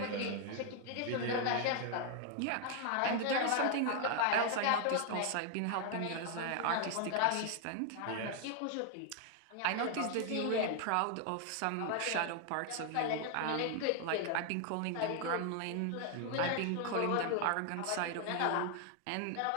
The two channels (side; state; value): both; different; correlation 0.00